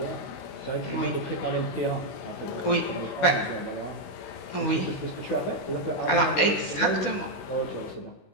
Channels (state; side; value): late; right; 16 ms